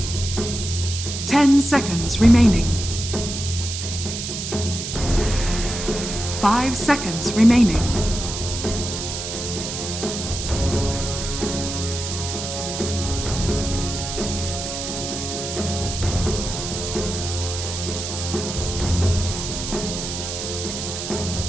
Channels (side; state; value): right; noise; hiss, 6 dB below the sound